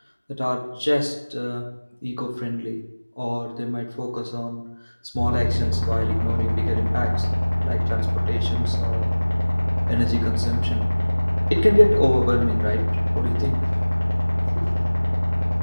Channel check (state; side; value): inverted; both; correlation -1.00